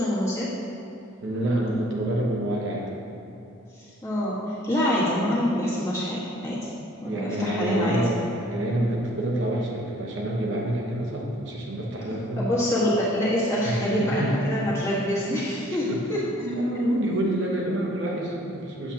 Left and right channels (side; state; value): both; normal; correlation 0.58